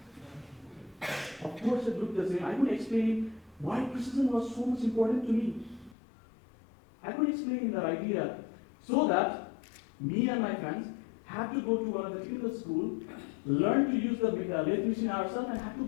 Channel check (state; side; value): drops out; right; at 6.0 s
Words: Of course it looked the same. I couldn't explain why precision was so much important to me. I couldn't explain that idea. So that me and my friends had to go to one of the technical school, learn to use the lathe machine ourselves, and had